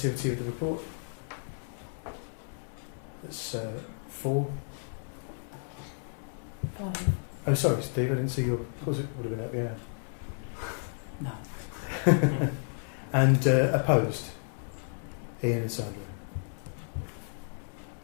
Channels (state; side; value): silent; right; digital silence